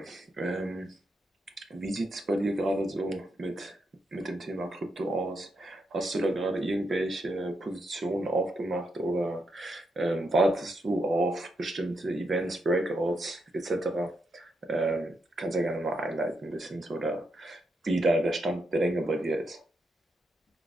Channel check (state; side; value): normal; both; correlation 0.81